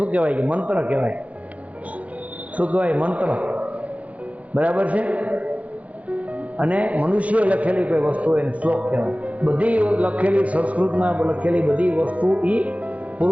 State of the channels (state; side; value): late; left; 0.066 ms